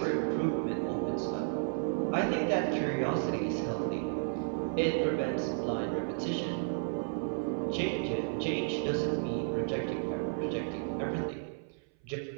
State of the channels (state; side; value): silent; left; 56 dB below the other